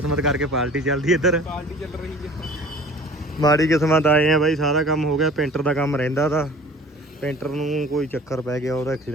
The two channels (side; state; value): both; normal; correlation 0.46